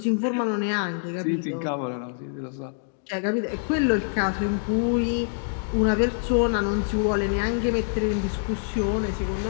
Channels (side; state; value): right; silent; digital silence